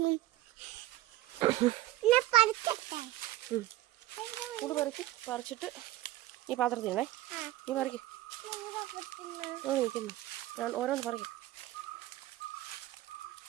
കൂട് പറിച്ചിട്ട് ഈ പാത്രത്തിലേ നീ പറിക്ക്. നിൽക്കുന്നു ഞാൻ ഓരോന്ന് പറിക്കും.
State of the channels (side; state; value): left; quieter; 16.1 dB